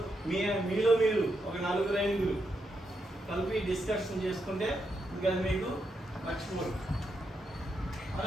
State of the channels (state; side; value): normal; both; correlation 0.82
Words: మీలో మీరు ఒక 4-5 కలిపి డిస్కషన్ చేసుకుంటే ఇంకా మీకు మర్చిపోరు,